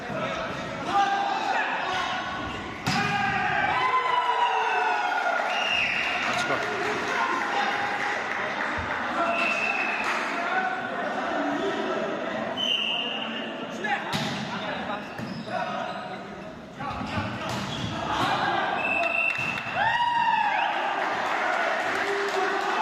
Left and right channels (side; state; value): both; identical; correlation 1.00